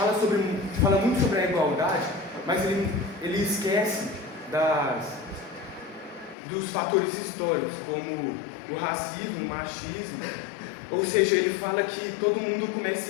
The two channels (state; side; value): drops out; right; at 6.4 s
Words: muito sobre a igualdade, mas ele esquece dos fatores históricos, como o racismo, o machismo. Ou seja, ele fala que todo mundo começa